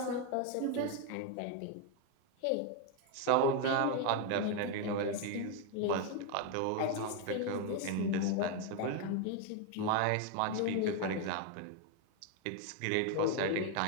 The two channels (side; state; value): both; different; correlation 0.01